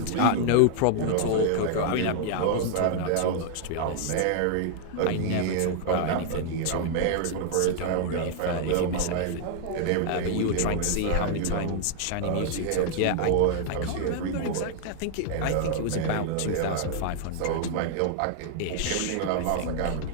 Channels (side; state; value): both; different; correlation 0.00